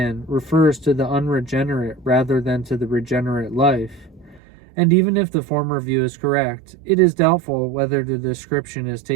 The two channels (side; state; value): left; drops out; at 4.4 s